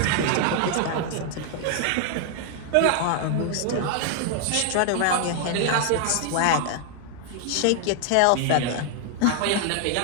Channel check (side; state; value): both; different; correlation 0.00